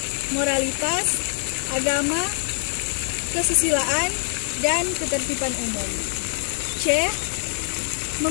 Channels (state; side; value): silent; right; digital silence